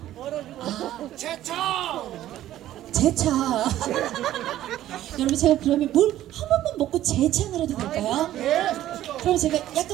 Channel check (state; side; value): quieter; left; 13.3 dB